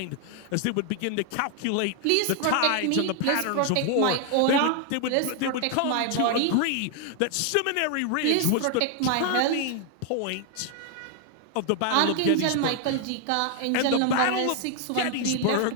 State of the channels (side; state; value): both; different; correlation 0.00